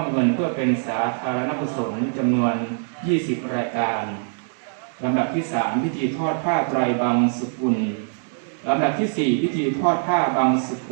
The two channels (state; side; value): silent; left; 63 dB below the other